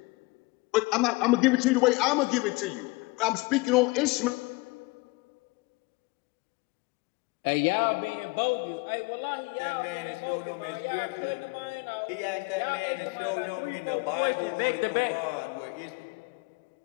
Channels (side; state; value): right; quieter; 24.4 dB